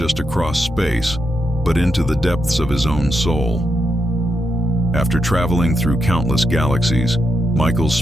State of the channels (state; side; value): noise; left; rumble, 17 dB below the sound